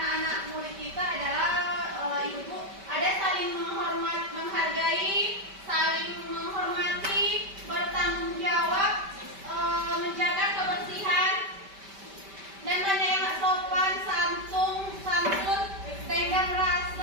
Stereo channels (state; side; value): late; left; 5.1 ms